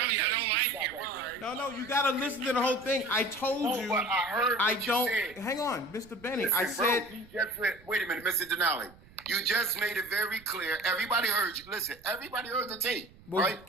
you, I don't like you. No, you gotta listen to the whole thing. I told you. But I heard I what you don't. said. Hang on, Mr. Benny. Listen, I said. bro, you just wait a minute, Mr. Denali. You just made it very clear. Everybody heard you. Listen, everybody heard the tape, Well,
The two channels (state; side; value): noise; right; rumble, 24 dB below the sound